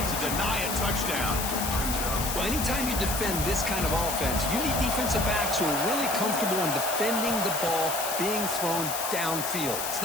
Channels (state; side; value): noise; left; hiss, 3 dB below the sound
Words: to deny a touchdown. Well, anytime you defend this kind of offense, you need defensive backs who are really comfortable in defending the ball being thrown downfield. It's